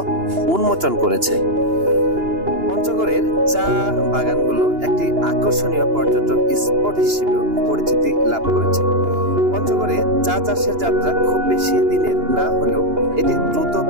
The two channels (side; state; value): left; late; 2.9 ms